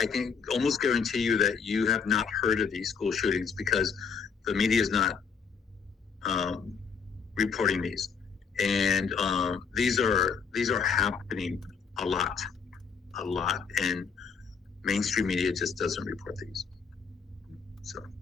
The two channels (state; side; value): quieter; right; 6.0 dB